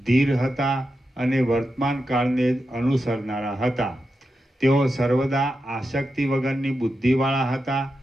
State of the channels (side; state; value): both; normal; correlation 0.89